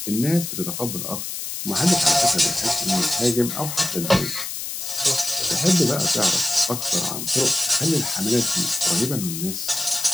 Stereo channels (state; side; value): noise; left; hiss, 6 dB below the sound